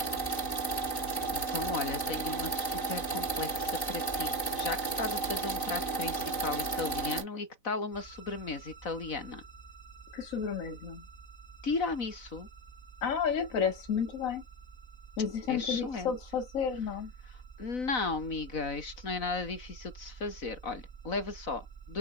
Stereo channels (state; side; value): late; right; 4.0 ms